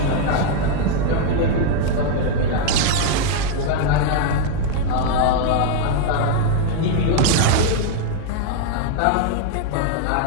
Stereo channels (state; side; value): different; both; correlation 0.00